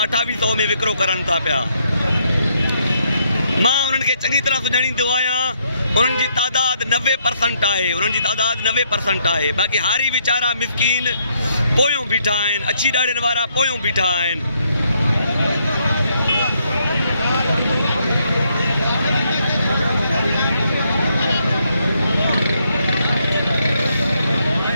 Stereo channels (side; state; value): both; inverted; correlation -0.73